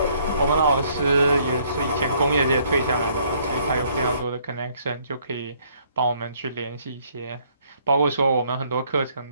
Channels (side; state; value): both; inverted; correlation -0.65